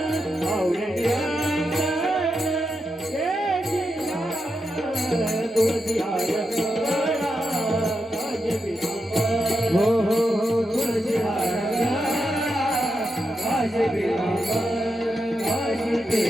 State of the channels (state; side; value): normal; both; correlation 0.86